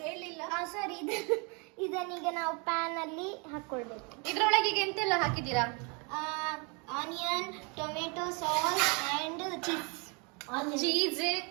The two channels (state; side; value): quieter; left; 32.4 dB